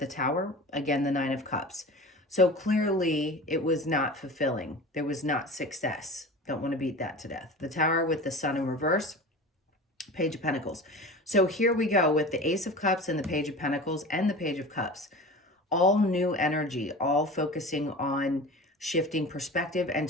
Tower, again, the Nine of Cups. So clearly it was not fulfilling. There was not success. Don't want to beat that to death. The Tower with the Sun in reverse, Page of Pentacles. So here we go with the Ace of Cups and the Page of Pentacles and the Page of Cups. All new energy, all focusing on shifting perspective and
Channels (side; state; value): both; normal; correlation 0.35